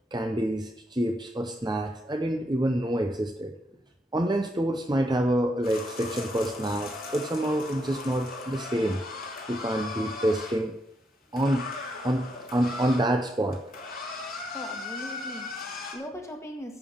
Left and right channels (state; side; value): normal; both; correlation 0.78